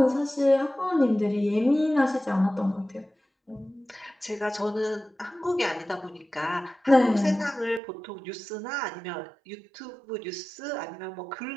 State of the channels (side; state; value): left; drops out; at 7.8 s